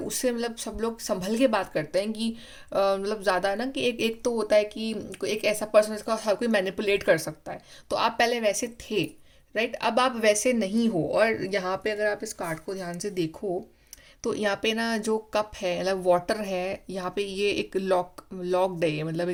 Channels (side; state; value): both; identical; correlation 1.00